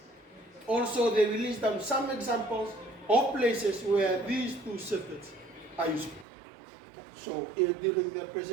also they will list down some examples of places where these 2 circuits are useful. So during their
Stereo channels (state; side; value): drops out; left; at 6.2 s